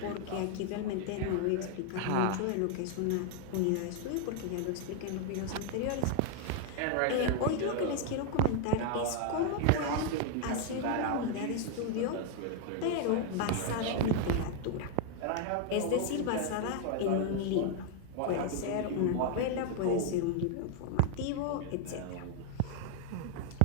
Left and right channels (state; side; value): different; both; correlation 0.00